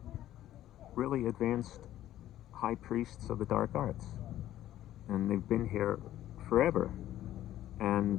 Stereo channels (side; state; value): right; quieter; 13.0 dB